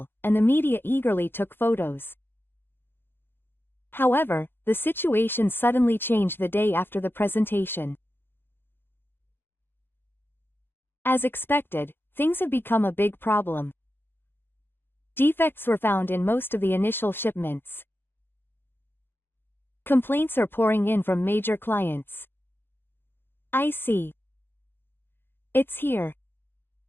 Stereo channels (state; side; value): late; right; 0.10 ms